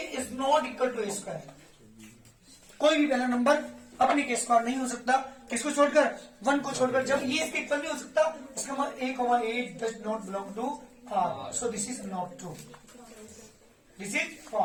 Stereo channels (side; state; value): both; identical; correlation 1.00